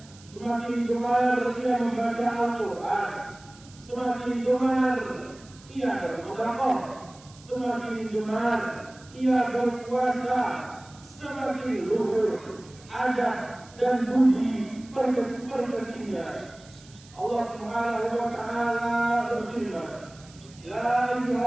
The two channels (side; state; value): right; noise; hiss, 23 dB below the sound